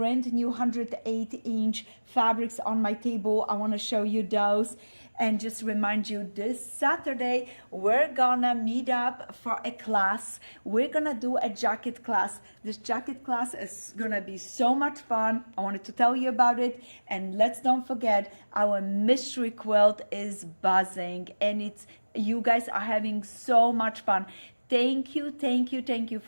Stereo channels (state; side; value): inverted; both; correlation -1.00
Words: new 108-inch fabrics on my table. I want to show you those and just remind you this Saturday we're gonna meet up for a class. We're gonna do a jacket class. This jacket class is gonna be so much fun. I wanted to tell you about it, and let's don't forget our mystery quilt is buzzing, and you guys are having so much fun. Thank you